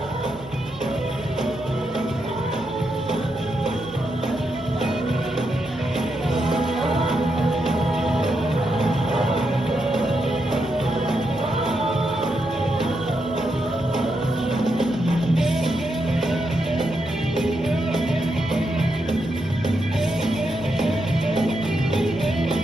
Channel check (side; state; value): right; noise; hum, 20 dB below the sound